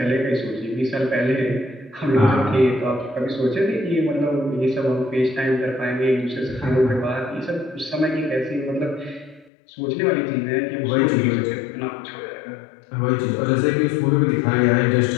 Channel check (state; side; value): drops out; right; at 9.5 s